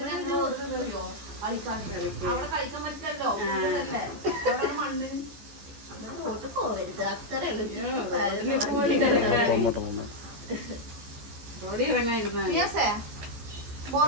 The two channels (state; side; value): late; left; 14 ms